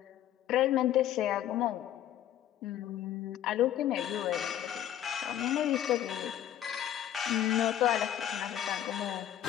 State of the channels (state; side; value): quieter; right; 11.5 dB